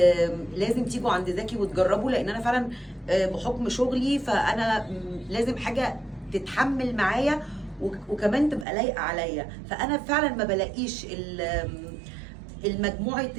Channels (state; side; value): drops out; left; at 8.7 s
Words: لازم تيجوا عند زكي وتجربوا، لان انا فعلا بحكم شغلي فانا لازم حاجه تتحمل معايا وكمان تبقى لايقه عليا. فانا فعلا ما بلاقيش المجموعه